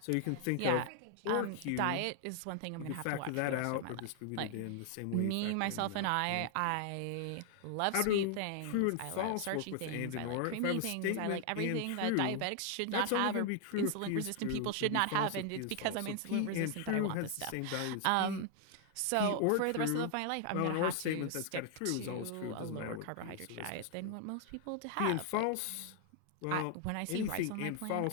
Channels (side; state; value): both; different; correlation 0.00